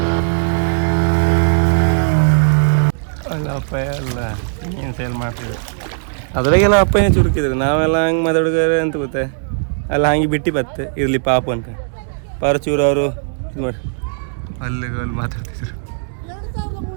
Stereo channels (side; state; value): left; silent; digital silence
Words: ಅಲ್ಲಪ್ಪ ಎಲ್ಲ ಮೀನು ಸೇಲ್ ಮಾಡ್ತಿದ್ರು. ಅದ್ರಾಗೆಲ್ಲ ಅಪ್ಪನೇ ಚುರುಕಿದ್ರು. ನಾವೆಲ್ಲ ಹಂಗೆ ಮಾತಾಡ್ಗಾರೆ ಅಂತ ಗೊತ್ತೆ ಅಲ್ಲ ಹಂಗೆ ಬಿಟ್ಟು ಬತ್ತೆ ಇರಲಿ ಪಾಪ ಅಂತ ಪರಚೂರು ಅವರು ಇದು ಮಾಡಿ ಅಲ್ಲಿ ಮಾತಾಡ್ತಿದ್ರು.